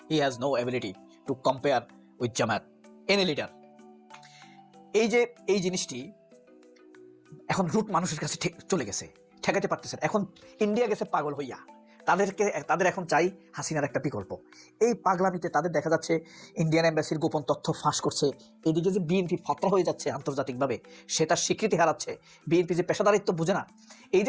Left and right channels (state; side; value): identical; both; correlation 1.00